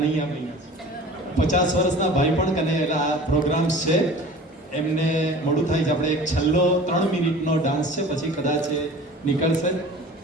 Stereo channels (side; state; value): both; normal; correlation 0.42